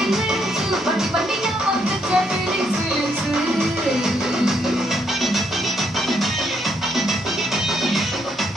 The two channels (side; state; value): both; normal; correlation 0.74